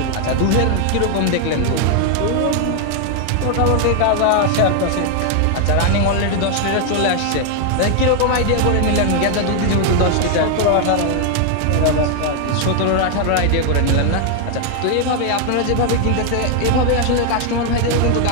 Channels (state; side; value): different; both; correlation 0.00